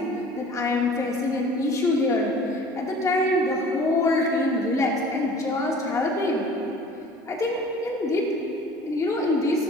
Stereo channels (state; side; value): normal; both; correlation 0.46